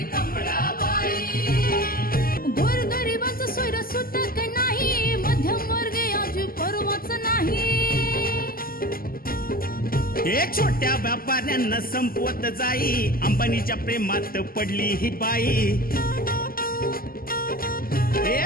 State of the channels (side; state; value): right; late; 0.42 ms